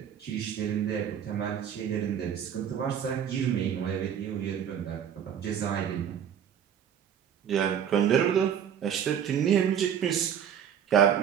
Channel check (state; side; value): quieter; left; 8.7 dB